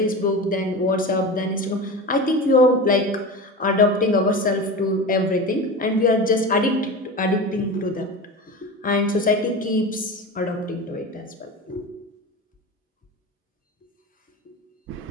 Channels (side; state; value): both; normal; correlation 0.28